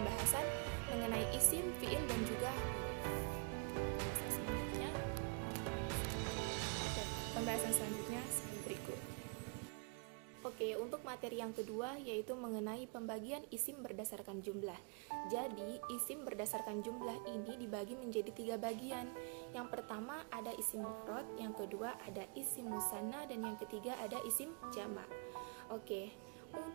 mengenai isim, fiil, dan juga pembahasan selanjutnya seperti berikut. Oke, untuk materi yang kedua yaitu mengenai pembagian isim berdasarkan jumlah. Jadi, isim berdasarkan jumlah ini dibagi menjadi 3 bagian. Yang pertama ada isim mufrad, yang kedua ada isim musanna, dan yang ketiga ada isim jamak. Oke,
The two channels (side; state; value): left; quieter; 35.5 dB